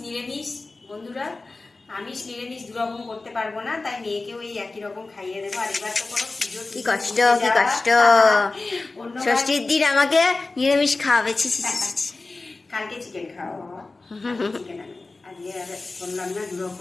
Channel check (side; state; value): right; quieter; 3.4 dB